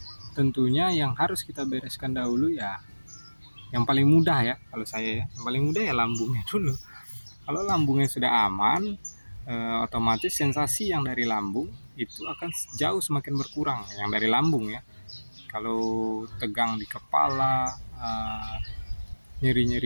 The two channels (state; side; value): inverted; both; correlation -1.00